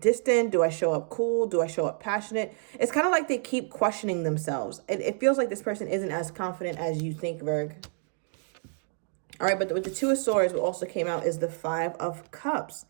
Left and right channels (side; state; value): left; silent; 59 dB below the other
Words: Do I show up cool? Do I show up passionate? It's kind of like they keep questioning themselves. It feels like this person isn't as confident as you think, Virg. All right, but with the Two of Swords, what also came out is the Five of Cups.